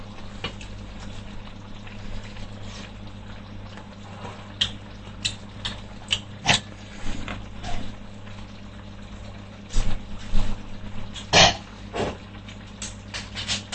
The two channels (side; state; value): both; identical; correlation 1.00